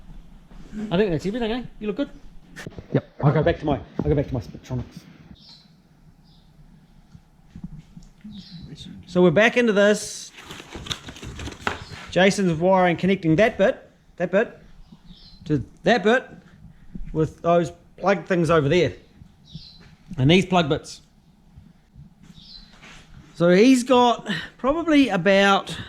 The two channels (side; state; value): both; identical; correlation 1.00